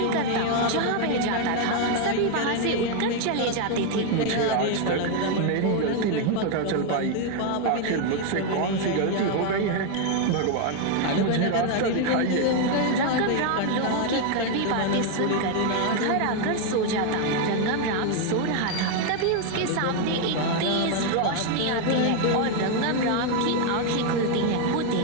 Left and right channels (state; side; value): different; both; correlation 0.01